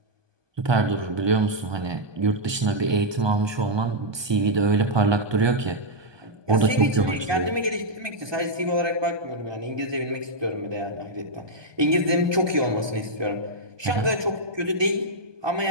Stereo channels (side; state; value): left; late; 1.2 ms